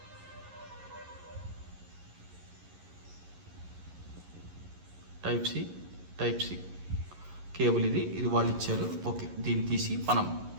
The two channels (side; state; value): left; late; 11 ms